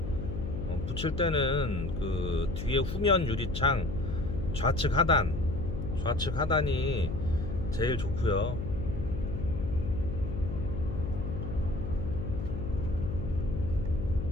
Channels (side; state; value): left; noise; hum, 5 dB below the sound